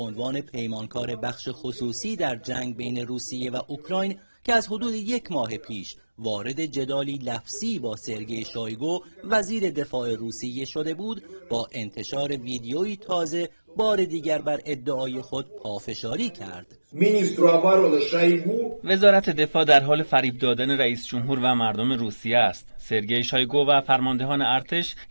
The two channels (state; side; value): inverted; both; correlation -1.00